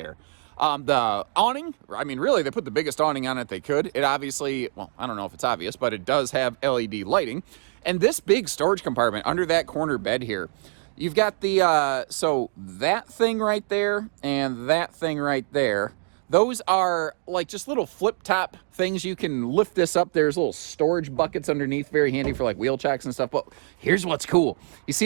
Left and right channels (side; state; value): left; silent; digital silence